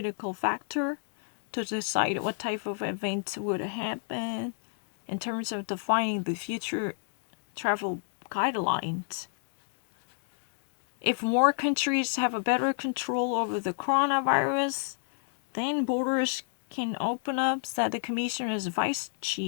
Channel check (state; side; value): silent; right; digital silence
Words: factor to decide what type of events would happen in terms of defining the future travel guidelines. If more countries have a better control over the coronavirus, then borders can open up, said the Commissioner's Vice